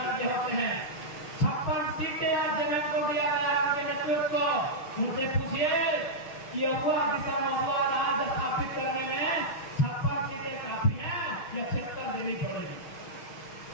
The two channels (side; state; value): right; late; 6.3 ms